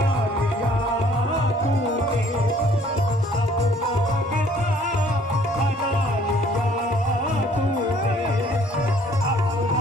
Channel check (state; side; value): normal; both; correlation 0.59